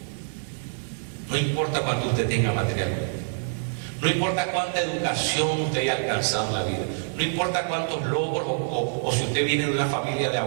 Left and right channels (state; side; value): silent; left; digital silence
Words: No importa cuánto usted tenga materialmente. No importa cuánta educación usted haya alcanzado en la vida. No importa cuántos logros o si usted viene de una familia de